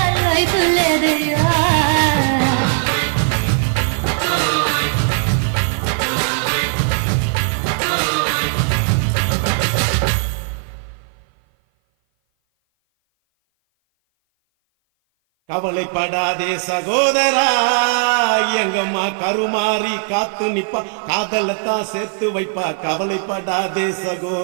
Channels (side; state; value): left; silent; 57 dB below the other